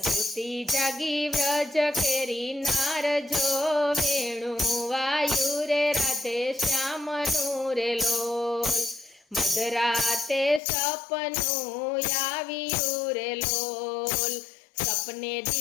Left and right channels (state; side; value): drops out; right; at 10.6 s